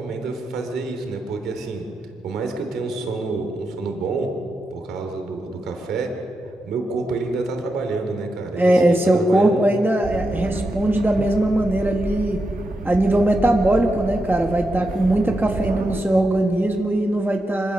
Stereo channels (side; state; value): both; normal; correlation 0.87